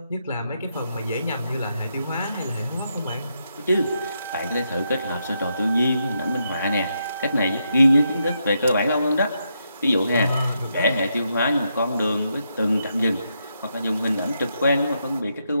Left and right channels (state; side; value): inverted; both; correlation -0.81